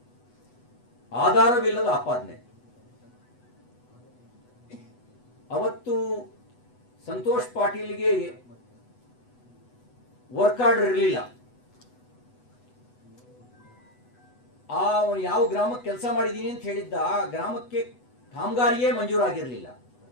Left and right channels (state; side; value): late; right; 8.1 ms